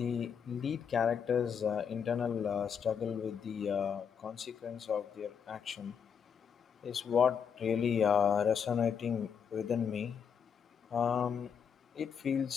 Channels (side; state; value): right; quieter; 7.2 dB